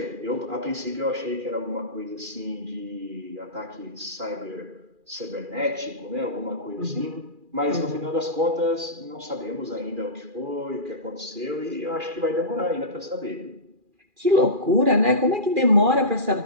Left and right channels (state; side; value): late; left; 2.4 ms